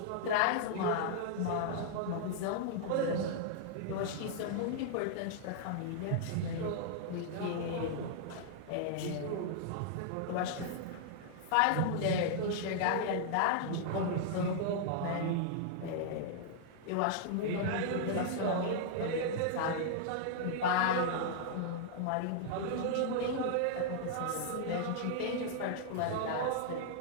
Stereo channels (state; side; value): different; both; correlation -0.01